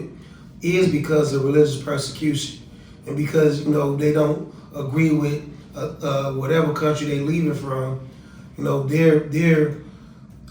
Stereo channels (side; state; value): both; identical; correlation 1.00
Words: is because of religious persecution. And because, they don't agree with whatever country they leaving from, their